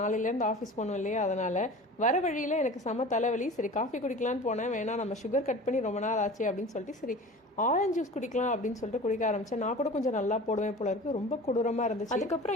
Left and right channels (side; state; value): both; normal; correlation 0.38